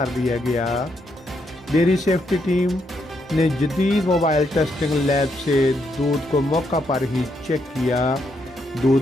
दिया गया। डेयरी सेफ्टी टीम ने जदीद मोबाइल टेस्टिंग लैब से दूध को मौका पर ही चेक किया।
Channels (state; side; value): normal; both; correlation 0.77